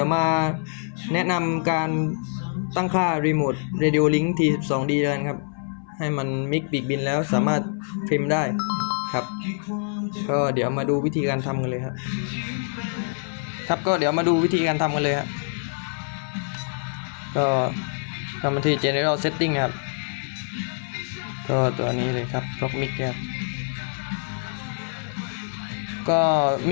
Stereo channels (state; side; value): silent; right; 62 dB below the other